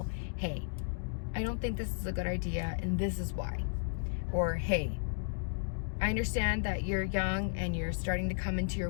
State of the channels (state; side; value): silent; right; digital silence